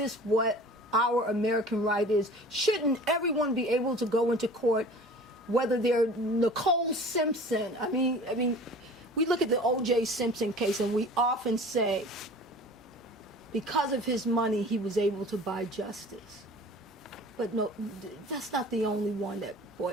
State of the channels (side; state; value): both; normal; correlation 0.43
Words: what our American right is? Shouldn't everyone be able to go into court, whether they're Nicole Simpson? I mean, we look at the O.J. Simpson case and we often say, because of his money, he was able to buy justice. But no, that's not the only one that